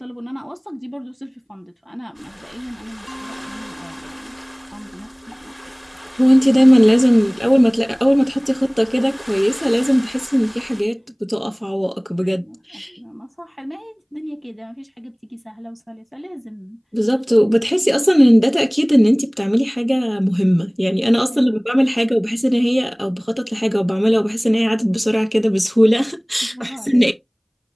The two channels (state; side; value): identical; both; correlation 1.00